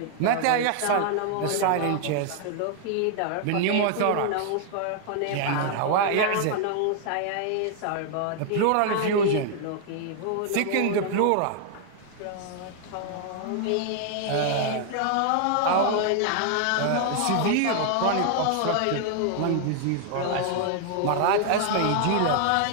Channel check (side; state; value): both; different; correlation 0.00